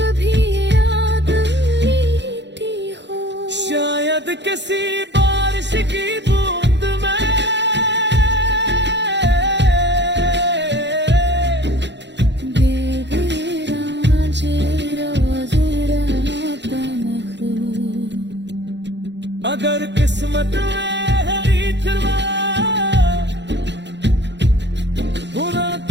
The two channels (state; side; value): late; left; 0.51 ms